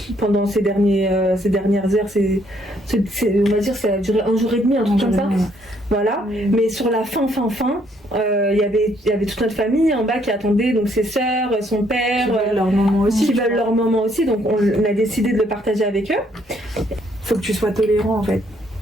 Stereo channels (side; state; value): both; normal; correlation 0.68